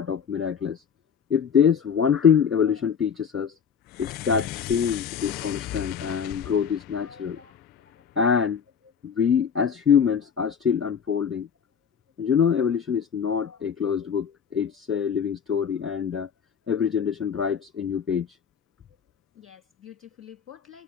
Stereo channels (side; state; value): right; quieter; 7.1 dB